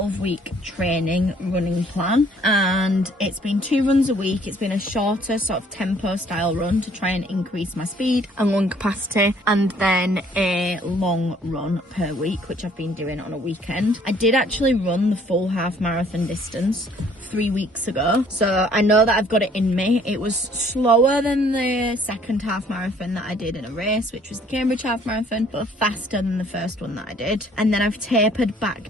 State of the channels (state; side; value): normal; both; correlation 0.60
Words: training running plan, and it's been 2 runs a week. It's been a shorter sort of tempo style run to try and increase my speed and lung capacity, and then a long run per week, which I've been doing on a weekend. I did actually run the full half marathon distance 3 weeks ago, so I know that I've got it in me. It was slower than the second half marathon that I did in a race, which was the Cambridge half marathon, but faster than the first one that I did. And then I've tapered